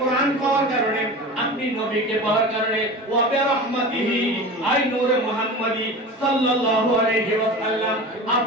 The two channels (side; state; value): both; normal; correlation 0.32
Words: পাওয়ার কারণে, আপনি নবীকে পাওয়ার কারণে, ওয়া বিরহমাতিহি, আই নূরে মুহাম্মাদি সাল্লাল্লাহু আলাইহি ওয়াসাল্লাম,